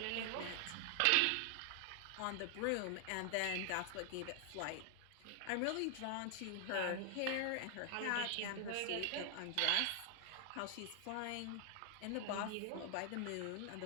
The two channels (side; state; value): both; different; correlation 0.00